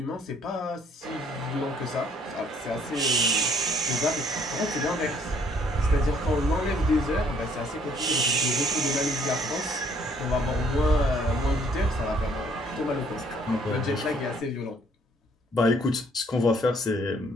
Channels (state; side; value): normal; both; correlation 0.63